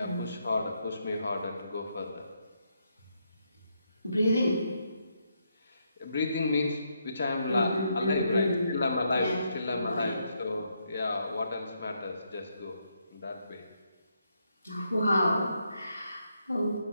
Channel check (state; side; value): inverted; both; correlation -0.78